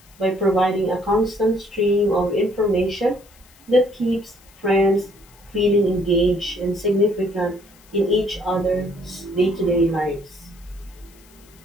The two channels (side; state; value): left; noise; hiss, 27 dB below the sound